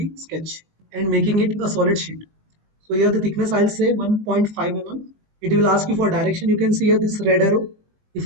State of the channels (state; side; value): late; left; 20 ms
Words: sketch and making it a solid sheet. So here the thickness I'll say 1.5 mm. It will ask you for direction. You can see here this red arrow. If